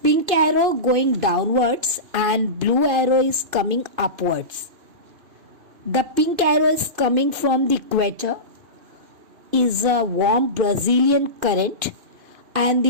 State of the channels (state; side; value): late; left; 2.5 ms